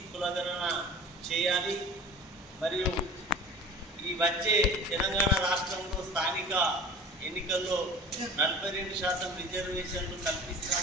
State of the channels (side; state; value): both; normal; correlation 0.39